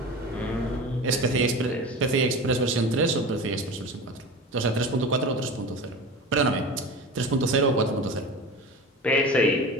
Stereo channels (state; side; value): normal; both; correlation 0.32